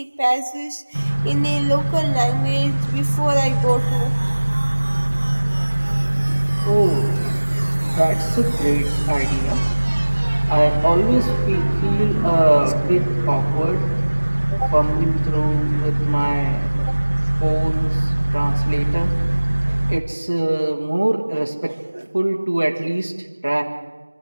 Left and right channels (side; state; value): both; inverted; correlation -1.00